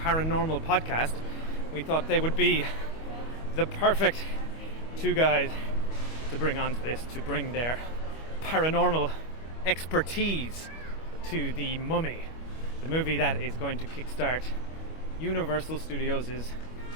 Podcast. We thought they would be the perfect two guys to bring onto this, to bring their paranormal expertise to The Mummy, the movie that is going to kickstart Universal Studios'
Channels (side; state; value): right; late; 25 ms